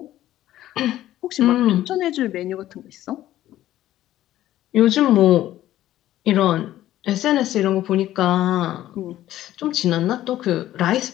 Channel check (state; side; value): quieter; right; 13.7 dB